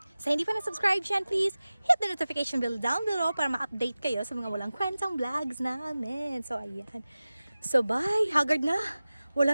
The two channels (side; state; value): both; inverted; correlation -0.97